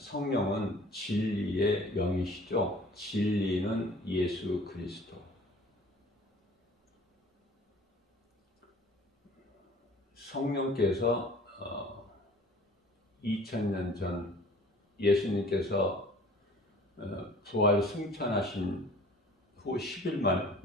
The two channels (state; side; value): normal; both; correlation 0.49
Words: 진리의 영이시죠. 진리는 예수 그리스도. 성령께서 2000년 전 예수님께서 부활 승천하신 후 10일 만에